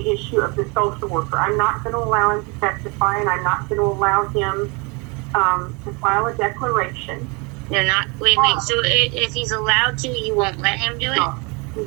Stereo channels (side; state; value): left; quieter; 29.7 dB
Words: issue of the social worker. I'm not going to allow him to testify, and I'm not going to allow him to file a declaration. They're not. Wait. So if he's allowed to, you won't let him do it? No,